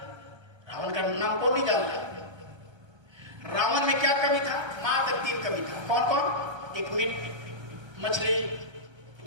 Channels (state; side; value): late; left; 1.3 ms